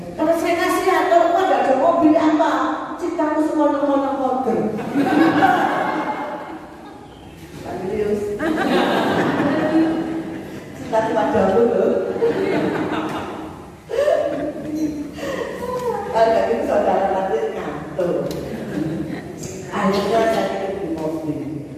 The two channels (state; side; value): identical; both; correlation 1.00